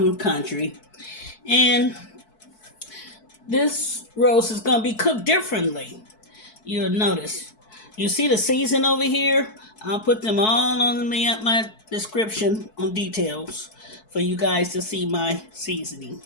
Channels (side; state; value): right; late; 4.6 ms